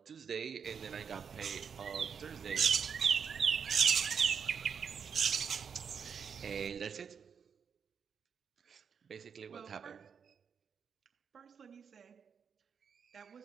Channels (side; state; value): left; quieter; 6.7 dB